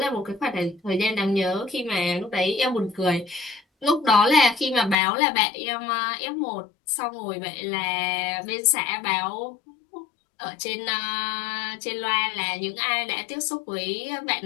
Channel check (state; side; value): drops out; right; at 5.0 s